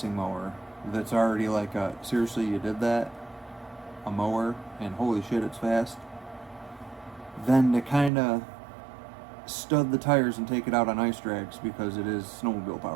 mower that's already like, seriously, you did that? A mower, and holy shit, it's fast. Than to kind of stud the tires and take it out on ice drags because it is snowmobile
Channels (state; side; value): drops out; left; at 8.1 s